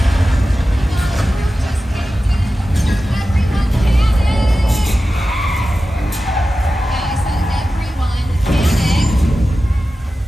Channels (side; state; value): both; normal; correlation 0.94